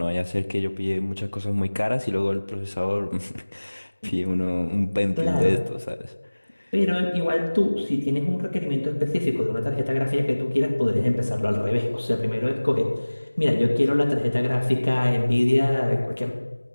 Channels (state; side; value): inverted; both; correlation -1.00